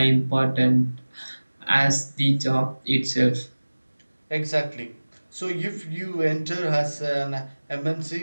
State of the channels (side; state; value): both; inverted; correlation -1.00